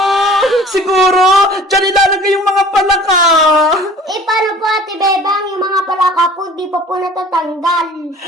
Siguro, dyan ilalagay yung mga palaka! Paano po, Ate Bebang, yung mga palaka po, di pa po natatanggal.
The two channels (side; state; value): both; normal; correlation 0.47